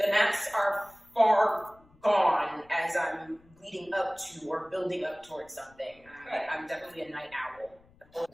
are far gone as I'm leading up to or building up towards something. I'm definitely a night owl. I've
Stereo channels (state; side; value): noise; left; rumble, 29 dB below the sound